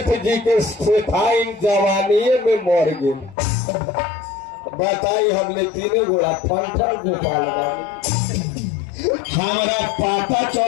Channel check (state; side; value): drops out; right; at 3.4 s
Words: सेठाई जवानी में मर गए। बताई हमने 3 गोड़ा फंक्शन गोपाल हमारा पता